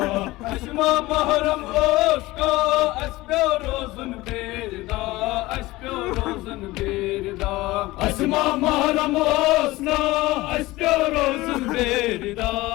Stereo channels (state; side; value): quieter; right; 19.4 dB